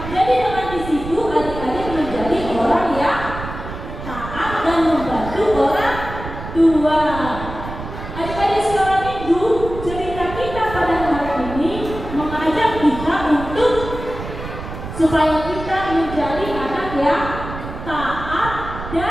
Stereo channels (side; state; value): right; noise; rumble, 10 dB below the sound